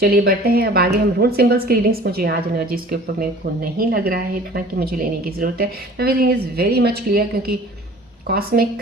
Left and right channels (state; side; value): normal; both; correlation 0.46